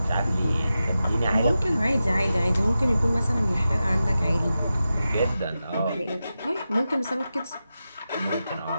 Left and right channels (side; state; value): both; inverted; correlation -0.92